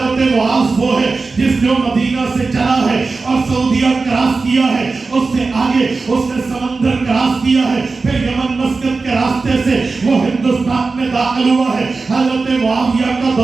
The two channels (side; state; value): left; quieter; 4.0 dB